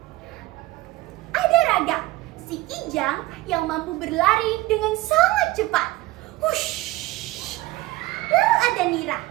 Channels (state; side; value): quieter; left; 18.0 dB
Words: Ada Raga, si kijang yang mampu berlari dengan sangat cepat. Hush. Lalu ada Nira,